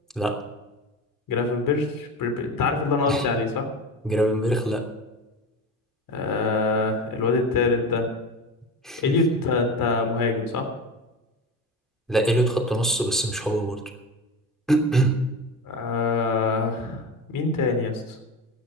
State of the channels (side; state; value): both; normal; correlation 0.27